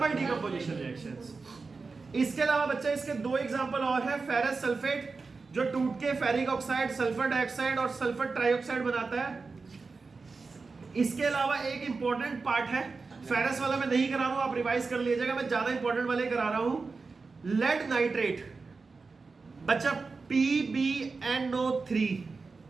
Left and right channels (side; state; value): left; quieter; 4.3 dB